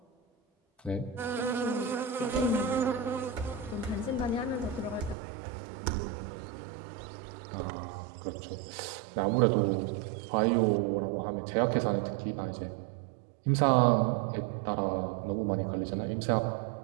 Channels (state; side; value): drops out; left; at 5.2 s